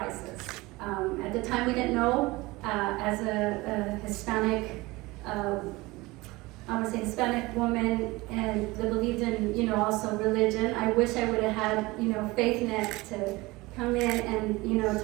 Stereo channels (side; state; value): left; quieter; 21.7 dB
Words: At the time we didn't know, as a Hispanic, I would say Hispanic woman, and that believed in, also religion. I wish I would have had, faith net to come in and,